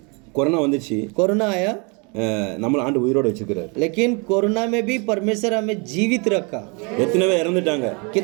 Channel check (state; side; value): quieter; left; 32.1 dB